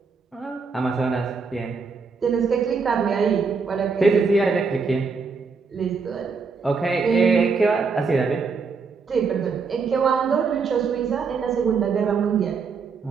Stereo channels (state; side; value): quieter; left; 5.0 dB